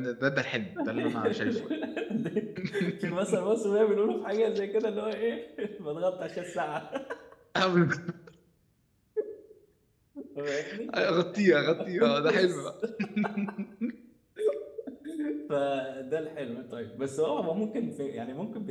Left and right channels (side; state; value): both; identical; correlation 1.00